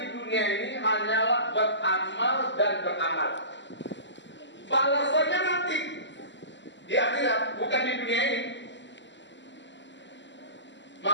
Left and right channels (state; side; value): late; right; 0.53 ms